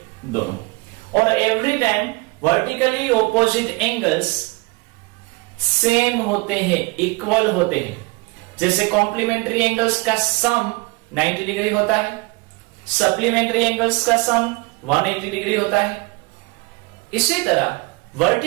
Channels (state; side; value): quieter; left; 25.8 dB